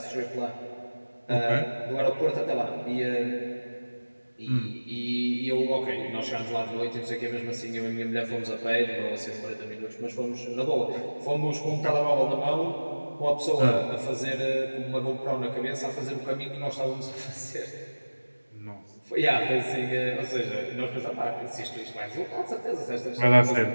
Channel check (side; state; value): both; inverted; correlation -1.00